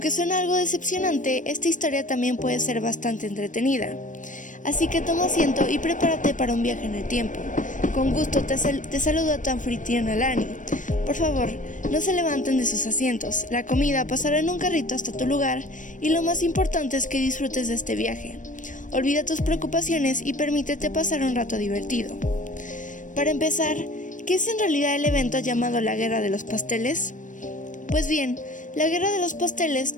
suena algo decepcionante, esta historia también puede ser bastante entretenida. Así que toma asiento y prepárate para un viaje en el tiempo. Con gusto te saludo a tu anfitriona Lani. Por favor, no se levanten de sus asientos, la comida pasará en un carrito hasta tu lugar y lo más importante es que disfrutes de este viaje. Olvida tus preocupaciones y permítete pasar un rato divertido. Para empezar, ¿qué es en realidad el evento llamado la Guerra de los Pasteles? Pues bien, la Guerra de los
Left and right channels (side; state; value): right; late; 0.37 ms